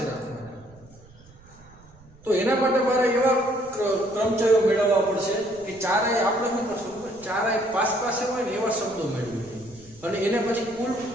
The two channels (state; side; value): noise; right; rumble, 24 dB below the sound